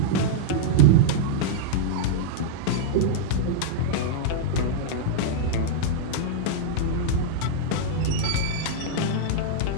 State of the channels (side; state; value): both; different; correlation -0.02